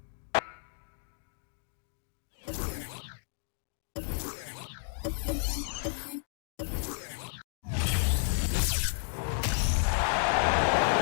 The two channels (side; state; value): right; silent; digital silence